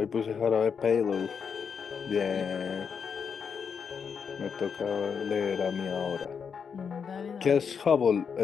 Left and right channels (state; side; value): quieter; right; 6.5 dB